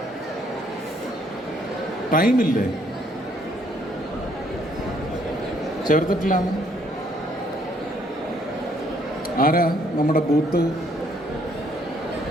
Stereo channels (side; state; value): both; normal; correlation 0.67